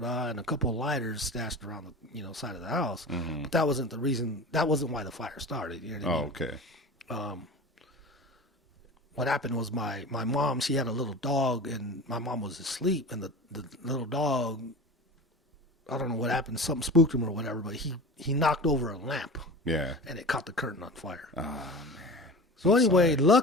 a couple of lighters stashed around the, side of the house. But that wasn't the reason. That wasn't why the fire started. You know what I mean? Okay. What happened was my mom, she had a little dog, and my mom was asleep, and the little dog, I don't know what happened, something spooked him or whatever, but he knocked over a lamp. Yeah. And it caught the curtain on fire. Oh man. So anyway,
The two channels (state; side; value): normal; both; correlation 0.34